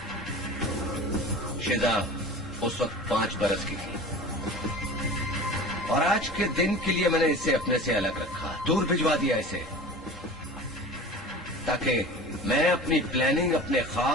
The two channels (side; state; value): both; normal; correlation 0.37